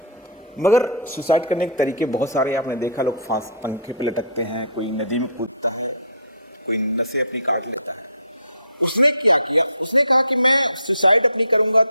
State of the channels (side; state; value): both; inverted; correlation -0.44